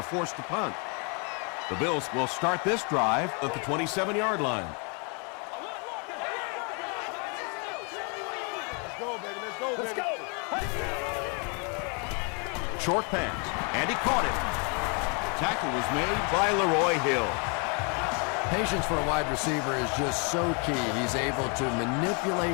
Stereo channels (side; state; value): right; quieter; 35.5 dB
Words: forced to punt. The Bills will start this drive at the 27-yard line. Let's go, baby. Let's go, baby. Let's go. Short pass, and he caught it. Tackle was made by Leroy Hill. Patience for a wide receiver is just so key. He's able to